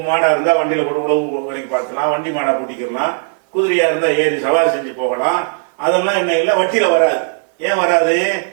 மாடா இருந்தா வண்டியில போட்டு உழவு வரைக்கும் பார்க்கலாம், வண்டி மாடா பூட்டிக்கலாம், குதிரையா இருந்தா ஏறி சவாரி செஞ்சு போகலாம். அதெல்லாம் என்ன இல்லை, வட்டியில வராது. ஏன் வராது?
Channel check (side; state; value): left; silent; 68 dB below the other